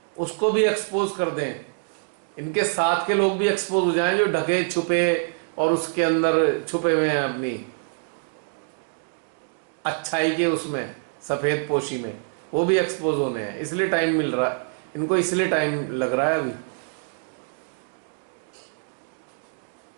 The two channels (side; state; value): left; silent; digital silence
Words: उसको भी एक्सपोज कर दें। इनके साथ के लोग भी एक्सपोज हो जाएं, जो ढके छुपे और उसके अंदर छुपे हुए हैं अपनी अच्छाई के उसमें सफेद पोशी में, वो भी एक्सपोज होने हैं। इसलिए टाइम मिल रहा है इनको, इसलिए टाइम लग रहा है अभी।